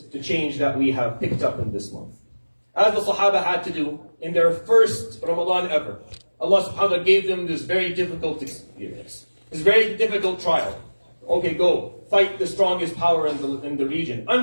to change that we have picked up in this month. As the Sahaba had to do in their first Ramadan ever. Allah subhanahu wa ta'ala gave them this very difficult experience, this very difficult trial. Okay, go, fight the strongest power in the region,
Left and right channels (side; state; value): both; inverted; correlation -1.00